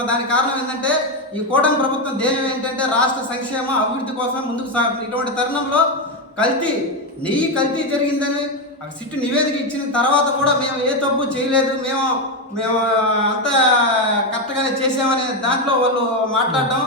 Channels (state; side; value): normal; both; correlation 0.09